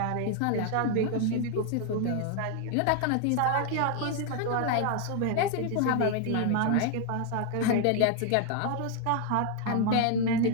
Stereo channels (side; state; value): both; different; correlation 0.00